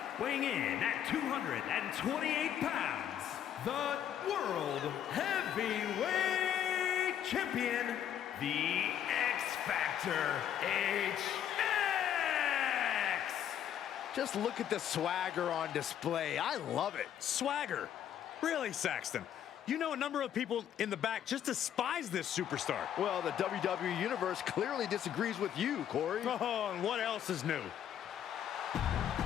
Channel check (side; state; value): right; quieter; 10.0 dB